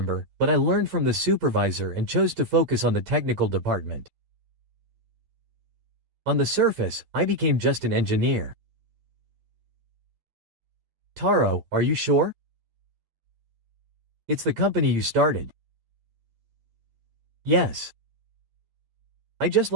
but I learned from the supervisor and chose to focus on the technical department. On the surface, I became just an engineer. Taro, are you sure? It's the company you started. Yes. I just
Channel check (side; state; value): left; late; 11 ms